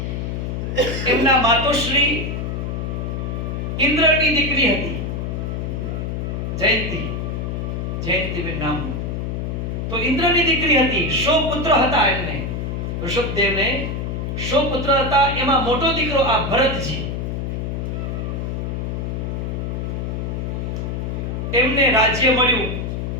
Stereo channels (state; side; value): noise; left; hum, 3 dB below the sound